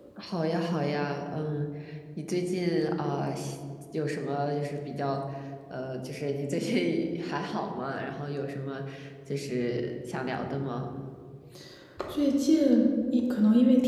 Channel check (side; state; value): both; identical; correlation 1.00